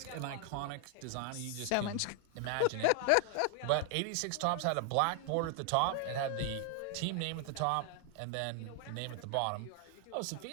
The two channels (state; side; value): different; both; correlation 0.00